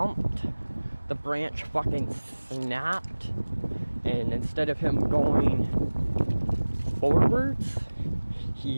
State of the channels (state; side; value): inverted; both; correlation -1.00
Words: the branch fucking snapped, and instead of him going forwards,